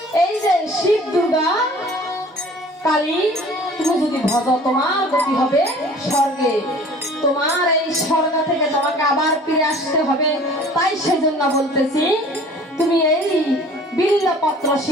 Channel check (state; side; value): normal; both; correlation 0.48